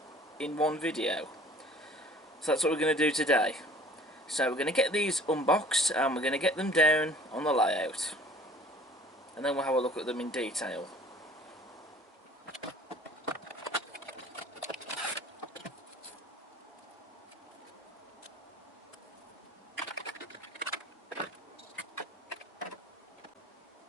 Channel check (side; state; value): both; normal; correlation 0.50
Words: in one video. So that's what we're going to do today. So we're going to get these unboxed and we're going to get them down on the layout, and then we'll have a look at them in detail.